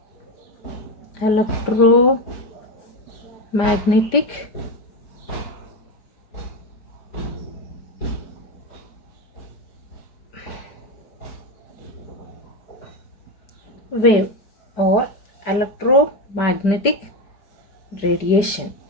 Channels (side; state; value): right; late; 5.0 ms